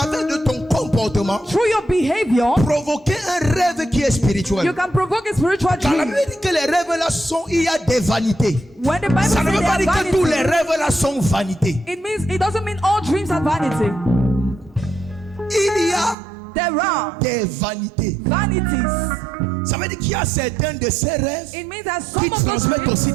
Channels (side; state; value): left; drops out; at 16.2 s